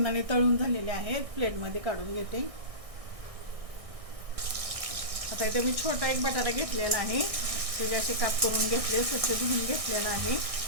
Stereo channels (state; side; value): late; left; 1.6 ms